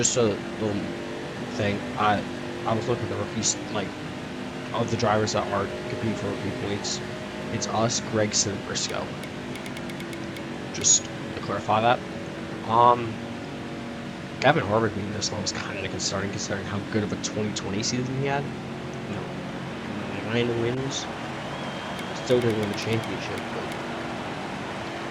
a little thing. I was looking at the rookies, like, of the drivers that are competing for rookie points. It's us, Gregson, and Briscoe. Just to clarify that. Gavin Harvick being this low was kind of concerning, considering how good of a 2020 season he had. 9 wins. Still didn't win the championship, but...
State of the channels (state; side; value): identical; both; correlation 1.00